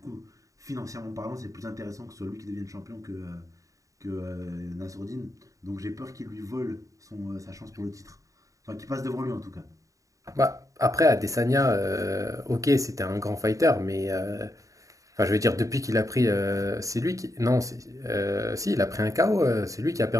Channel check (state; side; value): late; left; 0.16 ms